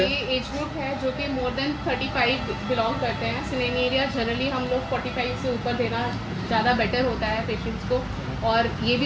हैं? ये एज ग्रुप है जो कि मोर देन 35 बिलोंग करते हैं। सिनेरिया जनरली हम लोग 45 से ऊपर देना ज़्यादा बेटर होता है पेशेंट्स को, और ये भी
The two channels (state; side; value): identical; both; correlation 1.00